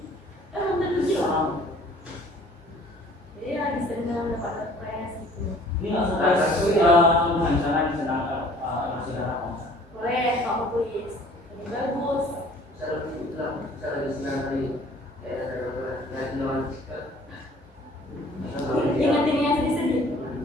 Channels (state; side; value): normal; both; correlation 0.53